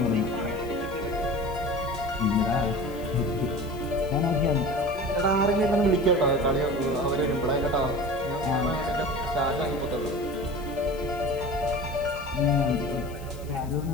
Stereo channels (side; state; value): left; noise; hiss, 22 dB below the sound